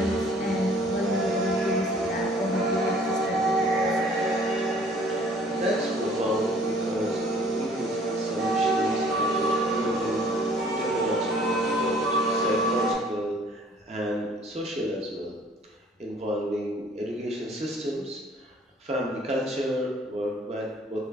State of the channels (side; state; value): both; normal; correlation 0.56